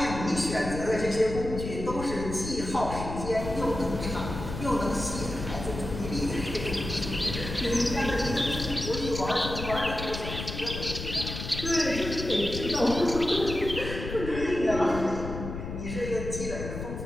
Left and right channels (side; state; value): left; noise; rumble, 7 dB below the sound